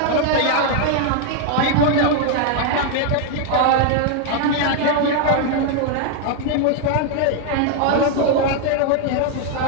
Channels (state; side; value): different; both; correlation 0.00